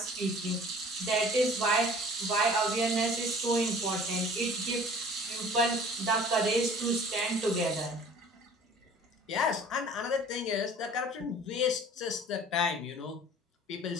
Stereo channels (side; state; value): both; normal; correlation 0.48